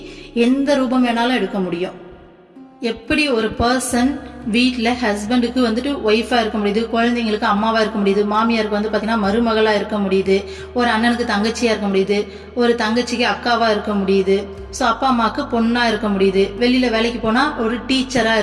எந்த ரூபம் வேணாலும் எடுக்க முடியும். எப்படி ஒரு பர்சன் வீட்டில் ஹஸ்பண்டுக்கு வந்துட்டு ஒய்ஃபா இருக்க முடியுது, குழந்தைங்களுக்கு அம்மாவா இருக்க முடியுது, மாமியாருக்கு வந்து பார்த்தீங்கன்னா மருமகளா இருக்க முடியுது, ஒரு அண்ணனுக்கு தங்கச்சியா இருக்க முடியுது, ஒரு தங்கச்சிக்கு அக்காவா இருக்க முடியுது, ஸோ அப்பா அம்மாவுக்கு பொண்ணா இருக்க முடியுது, வெளியில வேலைக்கு போனா ஒரு டீச்சரா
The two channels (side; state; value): both; identical; correlation 1.00